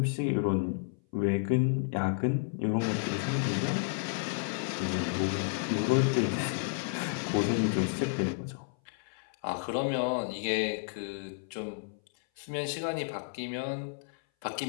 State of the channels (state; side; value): silent; right; 57 dB below the other